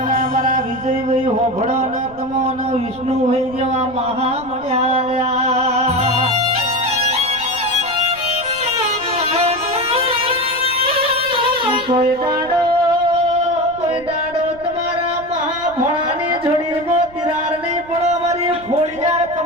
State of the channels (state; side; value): noise; right; rumble, 22 dB below the sound